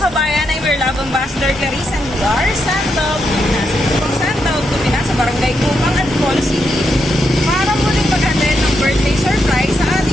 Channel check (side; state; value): both; normal; correlation 0.81